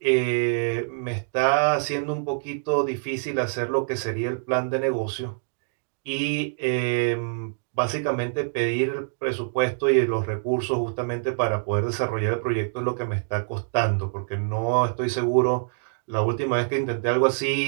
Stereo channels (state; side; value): silent; left; digital silence